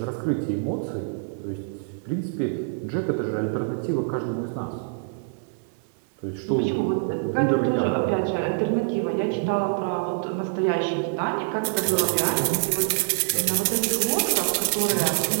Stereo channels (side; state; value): left; silent; digital silence